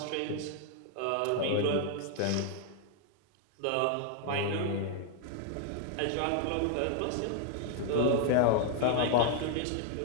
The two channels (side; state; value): both; different; correlation 0.00